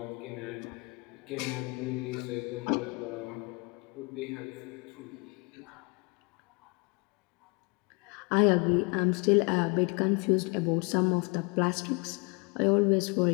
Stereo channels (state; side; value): quieter; right; 31.1 dB